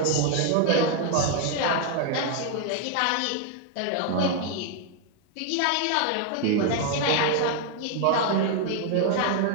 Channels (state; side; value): different; both; correlation 0.00